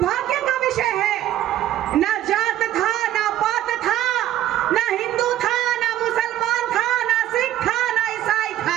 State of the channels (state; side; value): quieter; left; 13.0 dB